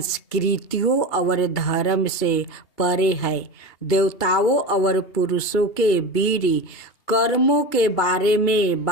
और धर्म से परे है। देवताओं और पुरुषों के वीर कर्मों के बारे में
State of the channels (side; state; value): right; late; 2.8 ms